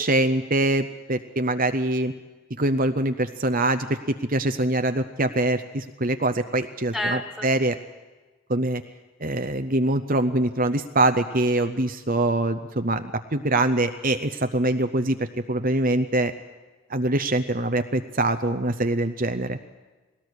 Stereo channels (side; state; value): both; normal; correlation 0.32